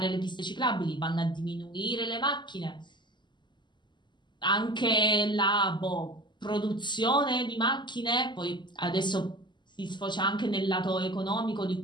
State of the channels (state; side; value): late; right; 0.22 ms